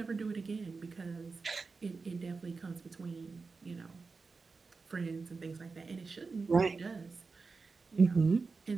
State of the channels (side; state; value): left; quieter; 4.4 dB